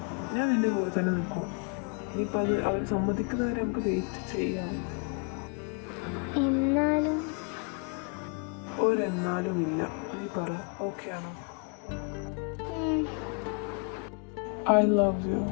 നിന്റെ കൂടെ തന്നെ നിൽക്കും. ഇനിയിപ്പോൾ അത് അവർ സമ്മതിക്കുന്നവരെ നമുക്ക് വെയിറ്റ് ചെയ്യാം. എന്നാലും ഒരെന്നാലും ഇല്ല. നീ പറ, ഓക്കെ ആണോ? I love you.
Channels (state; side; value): quieter; right; 38.5 dB